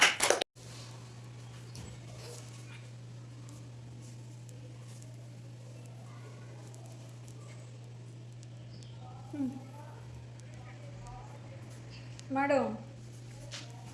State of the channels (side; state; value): both; identical; correlation 1.00